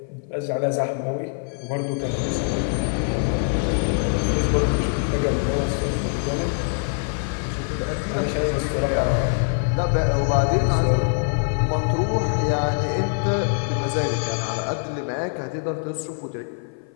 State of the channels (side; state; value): right; silent; 56 dB below the other